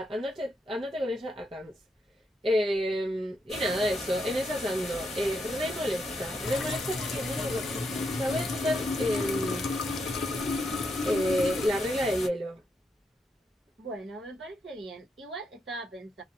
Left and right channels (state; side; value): normal; both; correlation 0.81